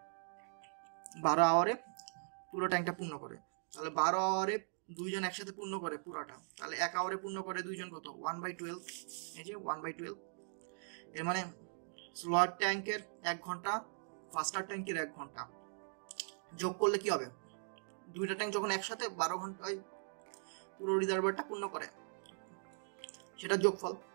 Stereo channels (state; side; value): silent; left; digital silence